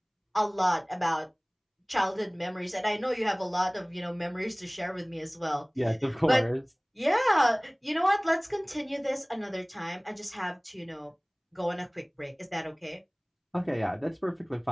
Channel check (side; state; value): both; identical; correlation 1.00